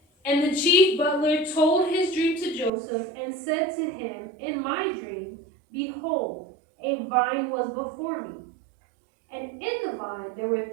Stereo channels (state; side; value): drops out; left; at 2.7 s